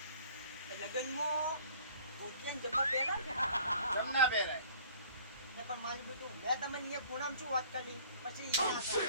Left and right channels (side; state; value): both; inverted; correlation -0.52